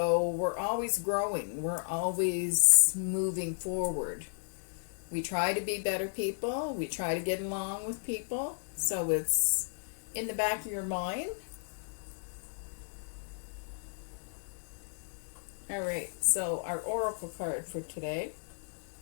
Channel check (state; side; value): silent; right; digital silence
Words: we're always growing. We're always moving forward. We try to be better people. We try to get along with people. So it's in the back of your mind. All right, so our oracle card for today